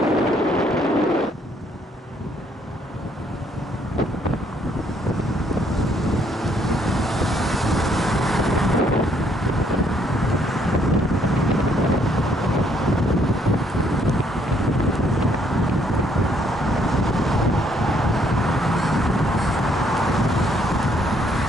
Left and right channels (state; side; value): normal; both; correlation 0.68